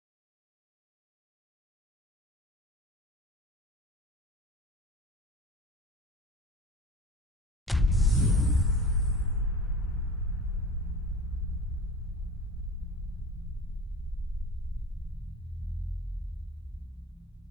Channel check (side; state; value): both; normal; correlation 0.36